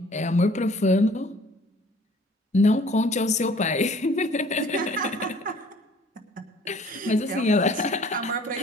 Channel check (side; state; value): both; normal; correlation 0.53